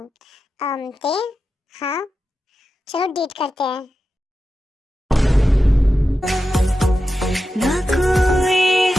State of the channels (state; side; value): normal; both; correlation 0.91